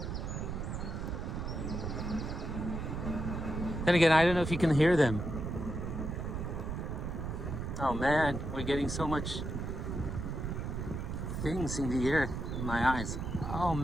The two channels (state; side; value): noise; right; rumble, 4 dB below the sound